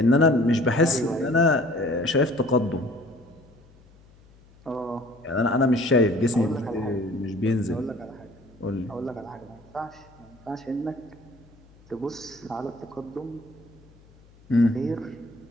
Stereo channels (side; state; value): left; noise; hum, 27 dB below the sound